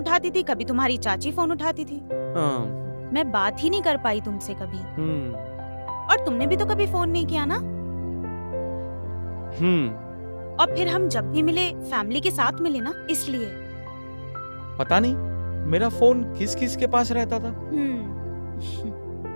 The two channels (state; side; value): inverted; both; correlation -1.00